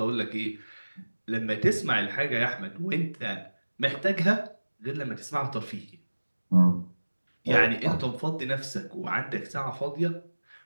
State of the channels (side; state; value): both; inverted; correlation -1.00